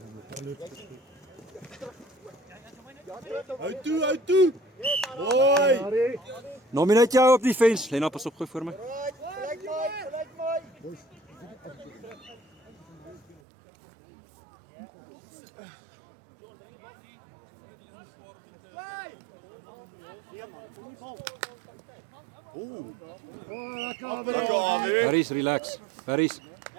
Uit toe. Hoi. Nominate jou op die fence. Lena, pas op, gooi voor my. Harris, relax. Harris,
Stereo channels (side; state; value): left; drops out; at 13.4 s